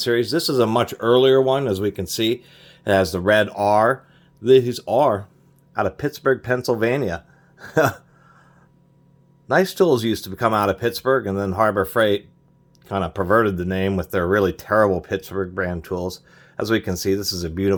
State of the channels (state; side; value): identical; both; correlation 1.00